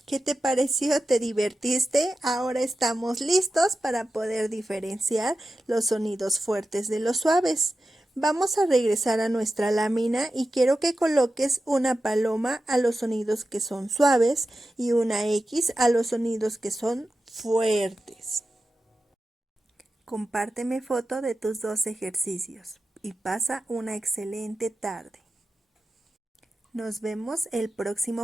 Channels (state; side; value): normal; both; correlation 0.92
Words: ¿Qué te pareció? ¿Te divertiste? Ahora estamos listos para poder diferenciar los sonidos fuertes de los suaves. Vamos a regresar a nuestra lámina y quiero que coloques una paloma a los sonidos que son suaves y una X a los sonidos que son fuertes. Compárteme foto de tus dos ejercicios y pasa una excelente tarde. Nos vemos el